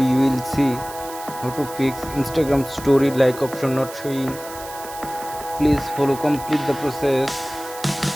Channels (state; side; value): noise; right; hiss, 14 dB below the sound